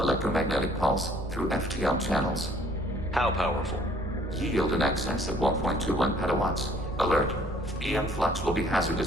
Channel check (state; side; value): normal; both; correlation 0.58